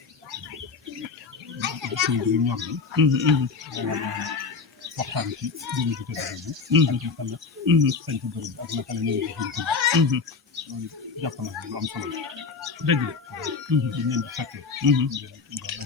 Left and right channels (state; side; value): quieter; right; 4.9 dB